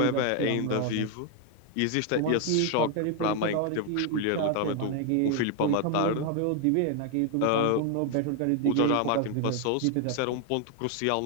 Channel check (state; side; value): different; both; correlation 0.01